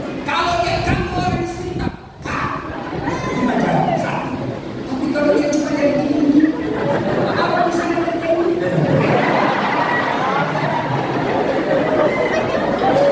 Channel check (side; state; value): both; identical; correlation 1.00